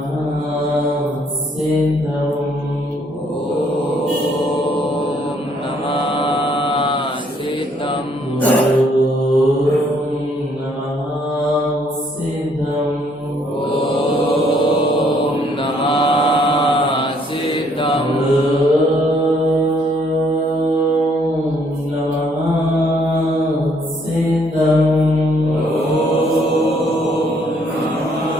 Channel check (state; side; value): normal; both; correlation 0.66